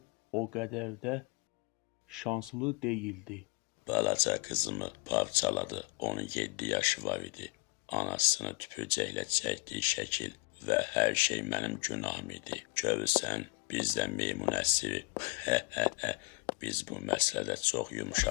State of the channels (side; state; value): right; quieter; 29.0 dB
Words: o qədər də şanslı deyildi. Balaca qızımı parçaladı, onun 7 yaşı var idi. Anasını tüpürcəklə çəkdiyi şəkil və hər şey mənim günahım idi. Görürsən, biz də meymun əsiri. Biz bu məsələdə çox